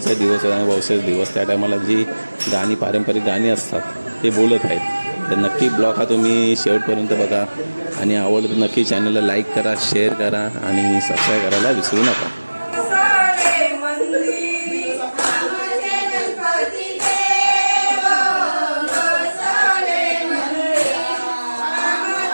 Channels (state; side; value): inverted; both; correlation -1.00